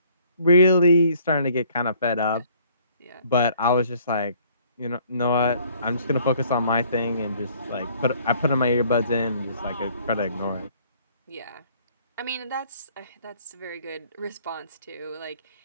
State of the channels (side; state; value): both; inverted; correlation -0.60